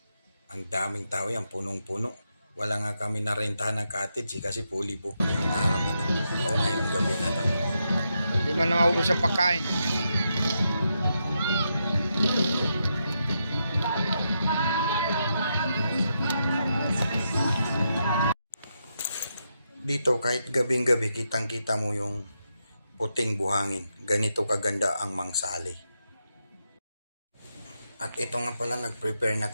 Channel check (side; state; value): both; inverted; correlation -0.83